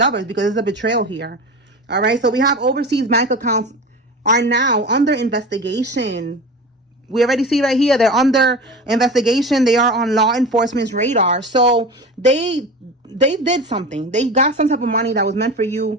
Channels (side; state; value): both; normal; correlation 0.31